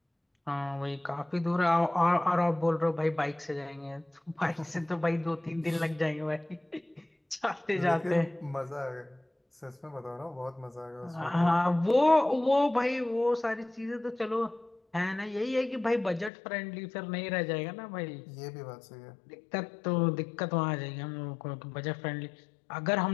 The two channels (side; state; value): right; drops out; at 16.3 s